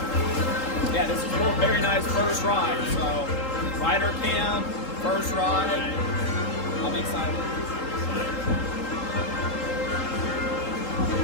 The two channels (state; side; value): late; right; 3.8 ms